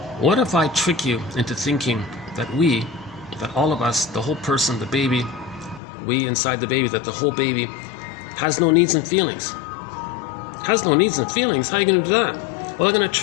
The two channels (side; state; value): right; drops out; at 5.8 s